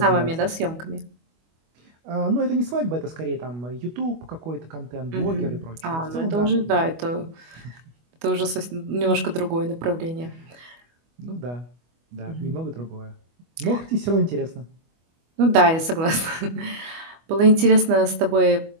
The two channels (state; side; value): late; left; 25 ms